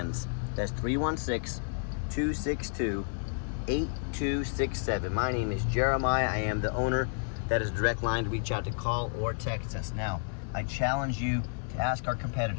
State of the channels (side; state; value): right; silent; digital silence